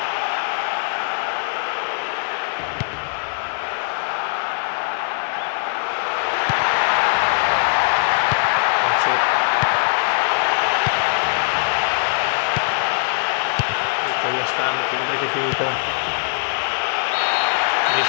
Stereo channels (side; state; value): right; silent; 65 dB below the other